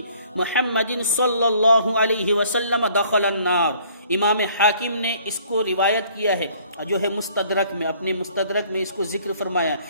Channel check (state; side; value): inverted; both; correlation -0.58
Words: محمد صلی اللہ علیہ وسلم دخل النار۔ امام حاکم نے اس کو روایت کیا ہے جو ہے مستدرک میں، اپنے مستدرک میں اس کو ذکر فرمایا